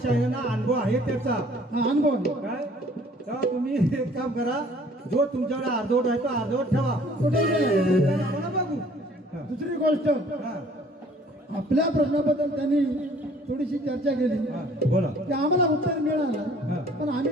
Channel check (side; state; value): both; normal; correlation 0.55